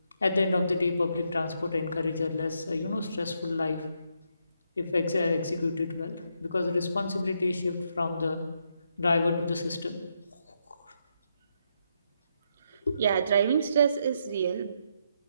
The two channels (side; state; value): both; inverted; correlation -0.78